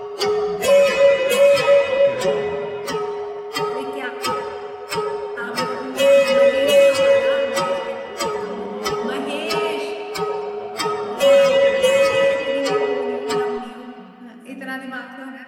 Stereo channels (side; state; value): both; identical; correlation 1.00